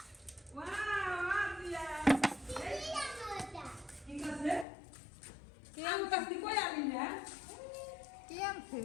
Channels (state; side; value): drops out; right; at 4.7 s